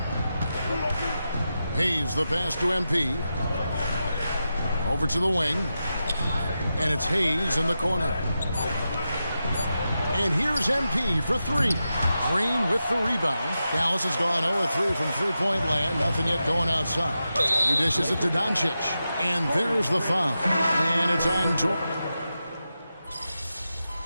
Hayes the pass to MP. Over to the wing. And it's Hayes in the corner. And here's MP for three. Green with the rebound. Dallas has gone 0-3 from three-point land. Nothing yet going outside. He dishes it to Doncic. And there's the foul. And it's on Jordan.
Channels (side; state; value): both; inverted; correlation -0.90